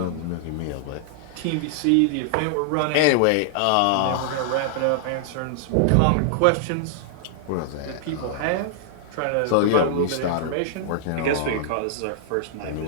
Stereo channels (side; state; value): both; different; correlation -0.01